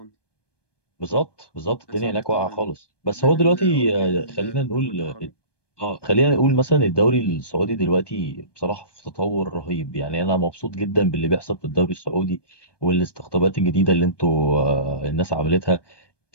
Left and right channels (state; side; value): late; right; 1.2 ms